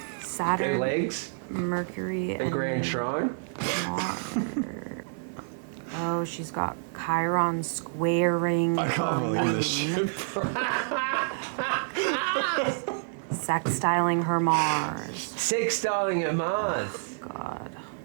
Saturn, Their legs, Mercury, a and grand shrine. Mars. Oh, she's got Chiron squaring. I can't believe this shit. Sextiling her Mars. Sextiling her Mars. Oh, God.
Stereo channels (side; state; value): left; silent; digital silence